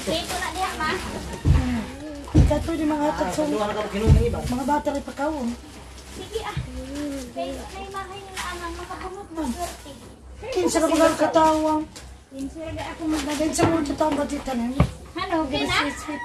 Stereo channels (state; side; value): identical; both; correlation 1.00